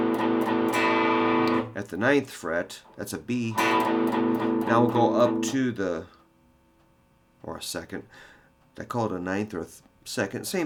at the 9th fret, that's a B. Now we'll go up to or a second. I call it a 9th or a second.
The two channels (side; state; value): both; identical; correlation 1.00